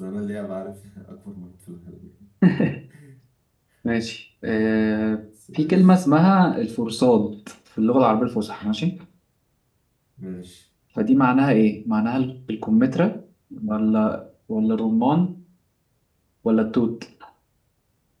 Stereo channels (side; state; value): both; identical; correlation 1.00